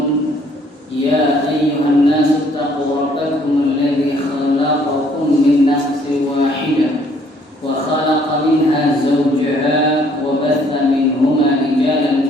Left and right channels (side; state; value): both; normal; correlation 0.63